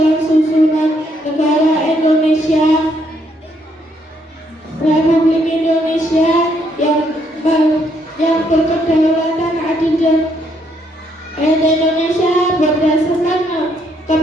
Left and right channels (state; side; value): normal; both; correlation 0.72